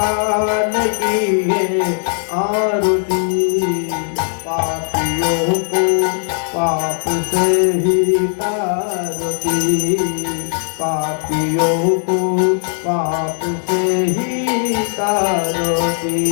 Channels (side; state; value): right; silent; 68 dB below the other